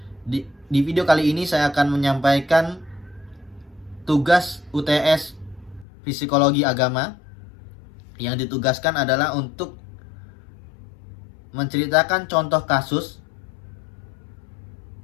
Di video kali ini saya akan menyampaikan tugas UTS Psikologi Agama. Yang ditugaskan adalah untuk menceritakan contoh kasus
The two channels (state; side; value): drops out; right; at 5.9 s